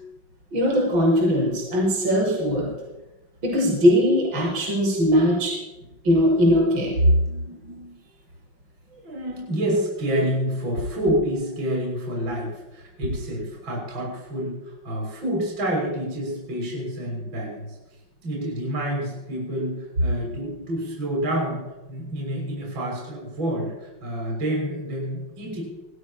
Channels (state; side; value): late; left; 5.5 ms